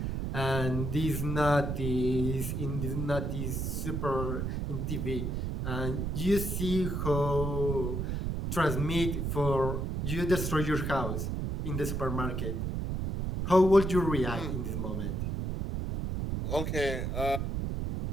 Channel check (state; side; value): noise; right; rumble, 2 dB below the sound